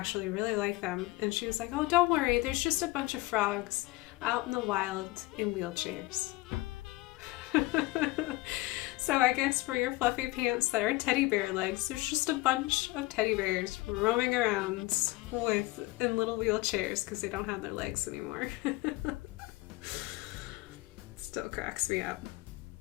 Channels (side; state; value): right; quieter; 20.5 dB